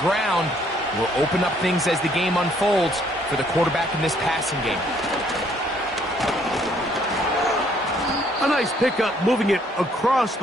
will open up things as the game unfolds for the quarterback in this passing game. A nice pickup, moving it across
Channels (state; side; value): normal; both; correlation 0.65